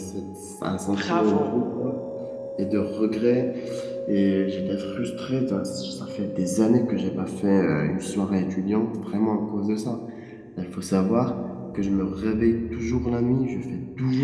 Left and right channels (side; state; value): both; identical; correlation 1.00